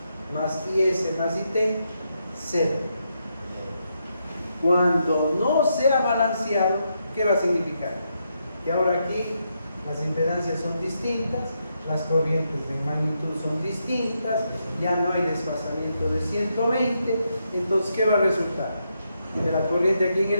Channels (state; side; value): inverted; both; correlation -0.81